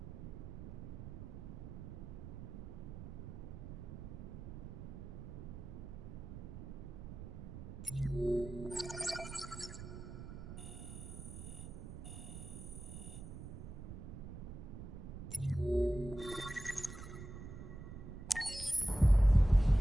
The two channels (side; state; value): right; noise; rumble, 9 dB below the sound